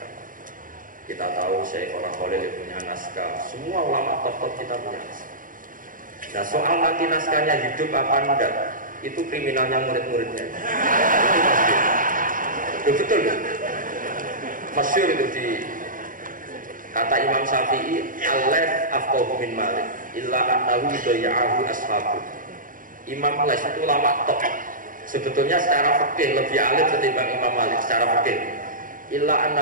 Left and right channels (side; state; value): left; late; 0.40 ms